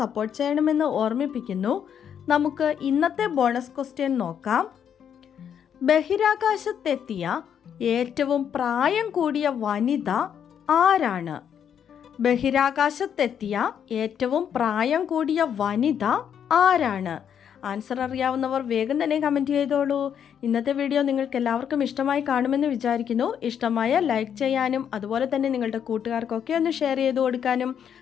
ചെയ്യണമെന്ന് ഓർമ്മിപ്പിക്കുന്നു. നമുക്ക് ഇന്നത്തെ ബോണസ് ക്വസ്റ്റ്യൻ നോക്കാം. ബഹിരാകാശത്തെത്തിയ ഏറ്റവും പ്രായം കൂടിയ വനിത ആരാണ്? ബഹിരാകാശത്തെത്തിയ ഏറ്റവും പ്രായം കൂടിയ വനിത ആരാണ്? ആൻസർ അറിയാവുന്നവർ വേഗം തന്നെ കമൻറ്റ് ചെയ്തോളൂ. ഇന്നത്തെ വീഡിയോ നിങ്ങൾക്ക് എല്ലാവർക്കും ഇഷ്ടമായി കാണുമെന്ന് വിചാരിക്കുന്നു. ഇഷ്ടമായ ലൈക്ക് ചെയ്യാനും അതുപോലെ തന്നെ നിങ്ങളുടെ കൂട്ടുകാർക്കൊക്കെ ഒന്ന് ഷെയർ ചെയ്ത് കൊടുക്കാനും,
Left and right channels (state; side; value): quieter; right; 8.5 dB